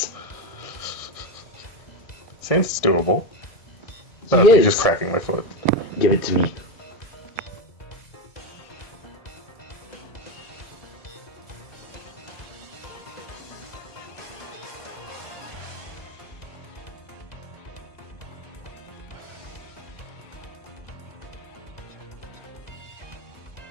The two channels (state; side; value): late; right; 1.7 ms